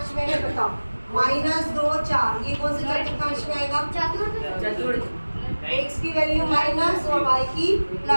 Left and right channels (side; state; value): both; inverted; correlation -1.00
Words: में है बताओ? -2 4, ये कौन से चतुर्थांश में आएगा? चतुर्थ x की वैल्यू माइनस और y की